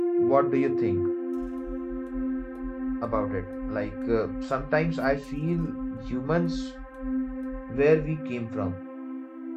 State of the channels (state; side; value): identical; both; correlation 1.00